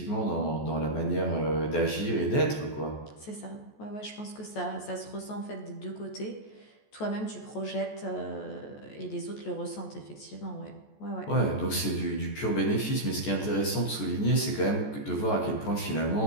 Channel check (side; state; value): right; late; 14 ms